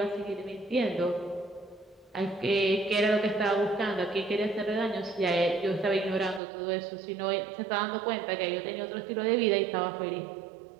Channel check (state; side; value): drops out; left; at 6.4 s